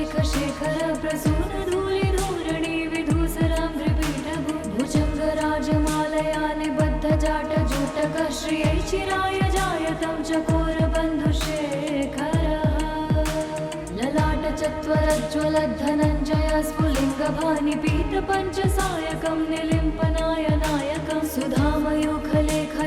शेखर प्रसून धूलि धूरणि विधूसराम्भ्रिपीठभु भुजङ्ग राजमालया निबद्ध जाट जोटक श्रियै चिराय जायतं चकोर बन्धुशेखरः ललाट चत्वरज्ज्वलद्धनञ्जय स्फुलिङ्गभानि पीत पञ्चसायकं निलिम्पनाय नायकं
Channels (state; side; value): identical; both; correlation 1.00